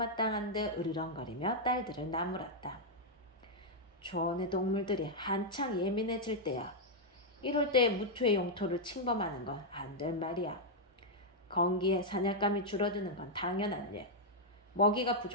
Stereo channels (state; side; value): normal; both; correlation -0.03